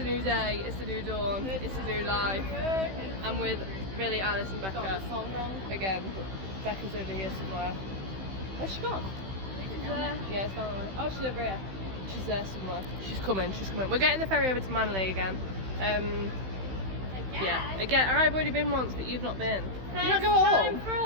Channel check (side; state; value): left; late; 16 ms